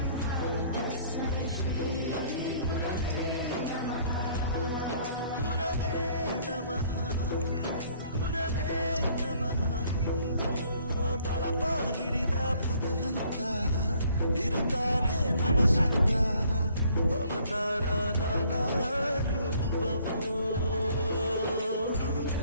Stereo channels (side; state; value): both; inverted; correlation -0.60